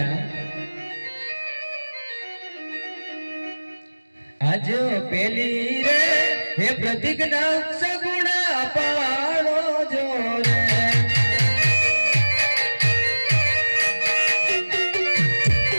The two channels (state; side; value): inverted; both; correlation -1.00